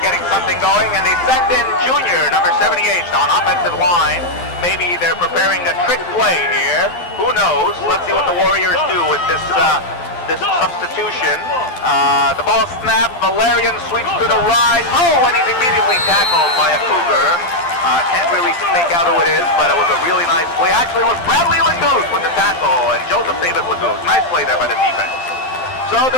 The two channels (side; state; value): right; late; 12 ms